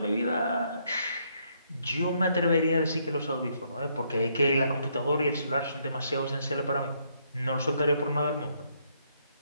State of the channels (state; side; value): inverted; both; correlation -0.72